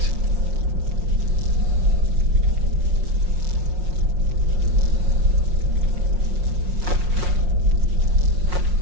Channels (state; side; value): late; left; 5.6 ms